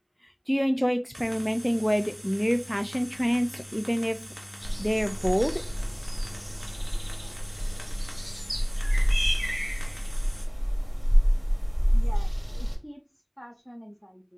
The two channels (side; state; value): both; identical; correlation 1.00